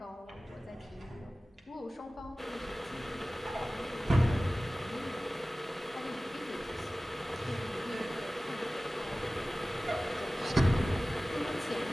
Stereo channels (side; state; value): both; normal; correlation 0.97